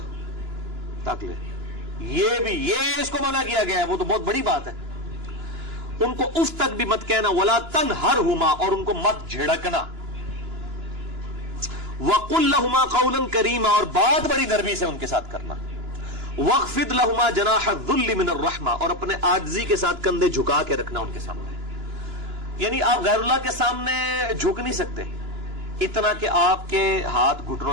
تاک لے، یہ اس کو منع کیا گیا ہے، وہ تو بہت بڑی بات ہے۔ ان کو اف تک بھی مت کہنا، ولا تنہرہما، اور ان کو مت جھڑکنا، وقل لہما قولا کریما، اور بات بڑی نرمی سے ان کے ساتھ کرنا، واخفض لہما جناح الذل من الرحمہ، اور اپنے عاجزی کے ساتھ کندھے جھکا کے رکھنا ان کے سامنے۔ یعنی آپ غیر اللہ کے سامنے جھک نہیں سکتے اتنا کہ آپ کے ہاتھ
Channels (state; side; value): late; left; 2.9 ms